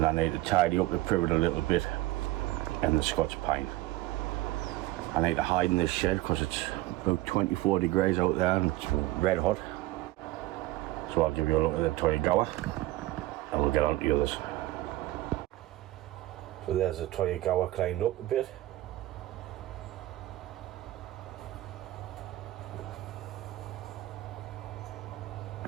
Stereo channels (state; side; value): quieter; left; 17.3 dB